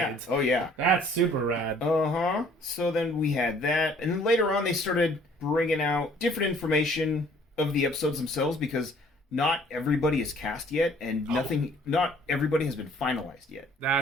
Yeah. Oh yeah. That's super rad. Uh-huh. So then we had that, and then later on they started bringing out different information of the episodes themselves because not everybody is cast yet, and not everybody has been finalized yet.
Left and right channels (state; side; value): normal; both; correlation 0.57